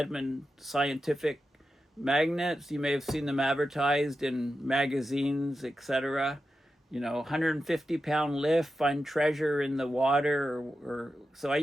scientific magnets. You may have seen them advertised in magazines, etc. 150-pound lift, find treasure in the water. So I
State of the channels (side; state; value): both; normal; correlation 0.90